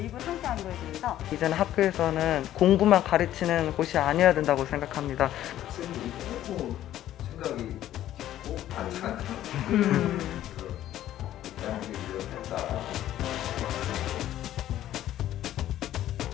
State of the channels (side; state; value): right; quieter; 12.7 dB